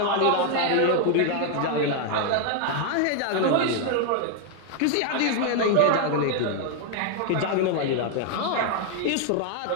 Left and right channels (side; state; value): both; different; correlation 0.00